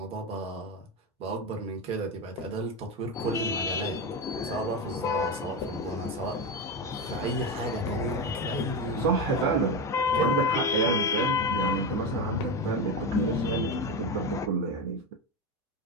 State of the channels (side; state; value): both; normal; correlation 0.16